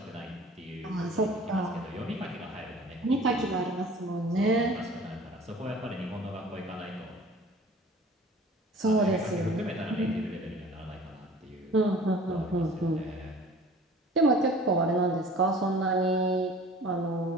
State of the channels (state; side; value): normal; both; correlation 0.46